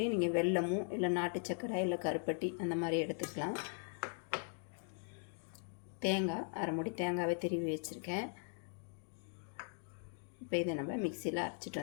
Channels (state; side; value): silent; right; 51 dB below the other